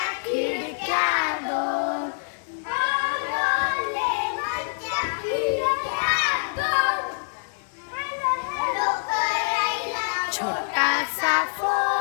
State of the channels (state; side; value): silent; right; digital silence